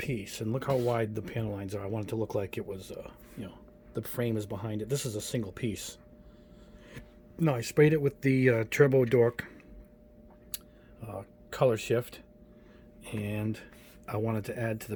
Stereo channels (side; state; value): both; identical; correlation 1.00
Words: and look how wide the panel lines are. I want it to look like it was, the frame is behind it. This is a single piece. No, I sprayed it with the Turbo Dork color shift, and I wanted to add to